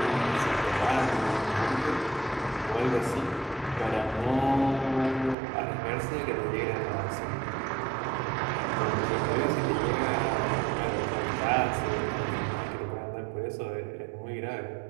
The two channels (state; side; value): drops out; left; at 5.4 s